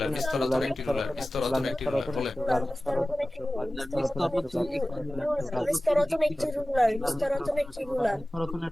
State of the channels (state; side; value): normal; both; correlation 0.96